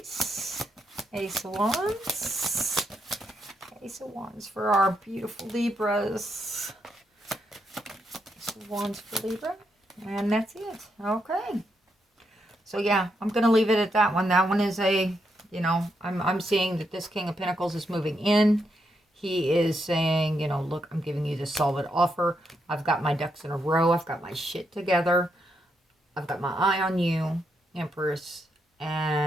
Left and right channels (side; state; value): both; normal; correlation 0.80